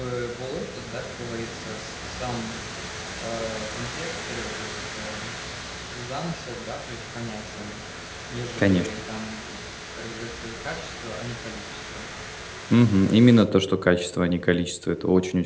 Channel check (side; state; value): both; identical; correlation 1.00